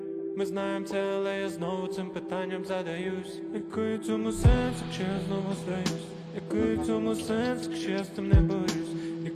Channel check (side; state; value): both; identical; correlation 1.00